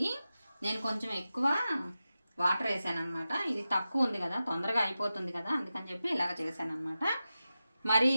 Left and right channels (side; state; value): both; inverted; correlation -0.93